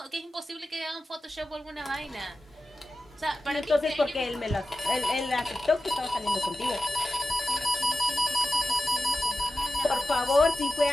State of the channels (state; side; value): normal; both; correlation 0.93